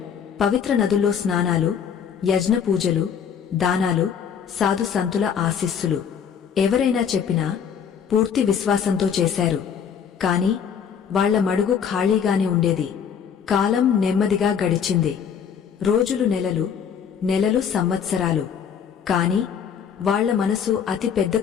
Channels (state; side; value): quieter; right; 7.5 dB